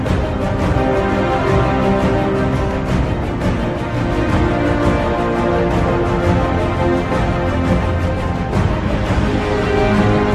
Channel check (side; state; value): both; identical; correlation 1.00